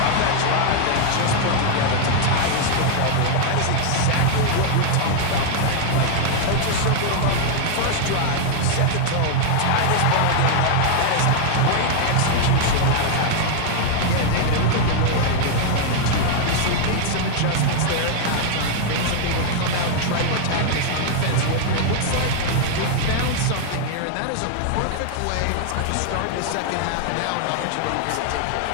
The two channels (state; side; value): different; both; correlation 0.00